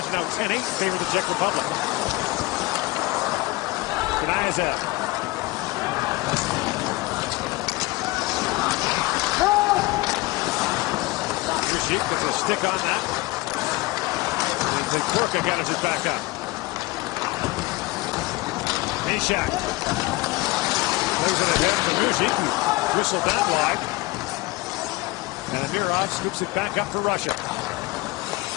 now 10-8 in favor of the Czech Republic. Kniazev. Deep with a stick on that. And then Korka got it just back up. Bishak. Moves it ahead for Muzic. Whistle that wide. And Amirov scoops it back up for Russia.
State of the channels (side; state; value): right; quieter; 21.2 dB